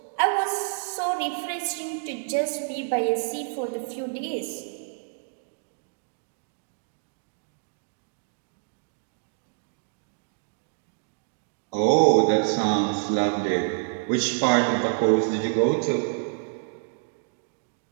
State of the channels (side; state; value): left; silent; 60 dB below the other